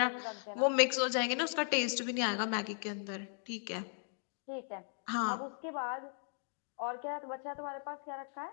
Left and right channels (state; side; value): silent; right; digital silence